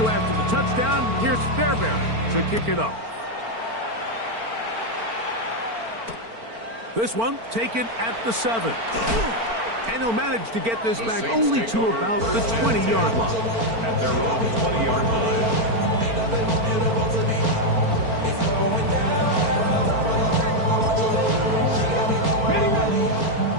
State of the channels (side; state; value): left; late; 4.4 ms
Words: after the touchdown, here's Fairbairn to kick it off. This one taken at the 7. And he'll manage to get this The back Saints only take to over about the first and 20-yard 10 line. at their own 20-yard line.